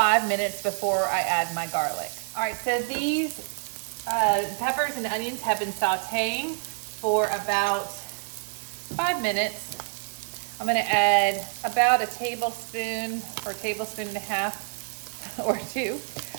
minutes before I add my garlic. All right, so these peppers and onions have been sauteing for about 5 minutes. I'm gonna add about a tablespoon or a tablespoon and a half or two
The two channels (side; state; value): left; silent; digital silence